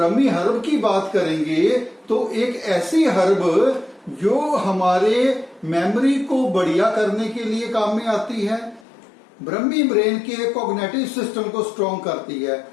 हर्ब की बात करेंगे तो एक ऐसी हर्ब जो हमारे मेमोरी को बढ़िया करने के लिए काम में आती है। ब्रह्मी ब्रेन के कॉग्निटिव सिस्टम को स्ट्रॉन्ग करती है।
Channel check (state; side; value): drops out; right; at 8.8 s